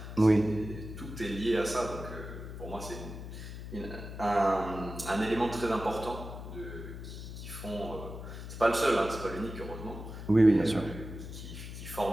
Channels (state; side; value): noise; left; hum, 10 dB below the sound